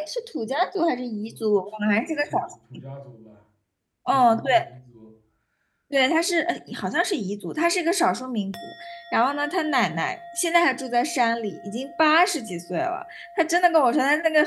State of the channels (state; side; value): identical; both; correlation 1.00